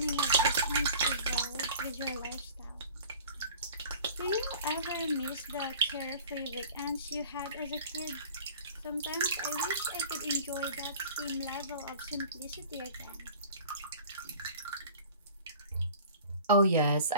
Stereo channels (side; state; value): both; inverted; correlation -0.44